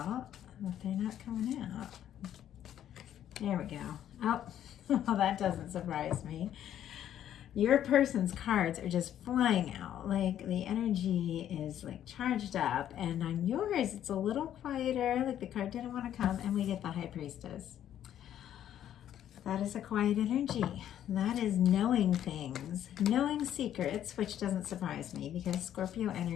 but they're not coming out. There we go. Oh, well, that doesn't surprise me. Your person's cards are just flying out. Like the energy is like charged up, and on yours, it's a little quieter. Like the card didn't want to come, and we get the High Priestess. That is a quiet energy. That is knowing things, knowing secrets, which doesn't surprise me because Scorpio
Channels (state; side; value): quieter; right; 10.9 dB